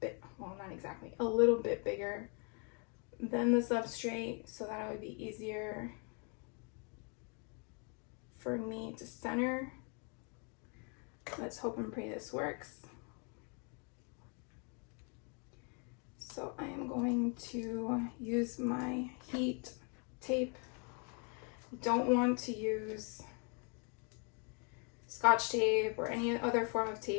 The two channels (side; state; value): right; quieter; 36.8 dB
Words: bit, well, not exactly, a little bit bigger than the substrate so that it would be easier for me to center. Let's hope and pray this works. So I am going to use my heat tape. You don't want to use Scotch tape or any other form of